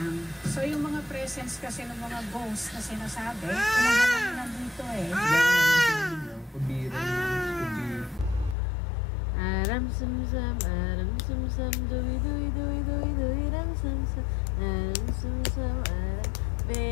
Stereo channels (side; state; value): right; drops out; at 8.6 s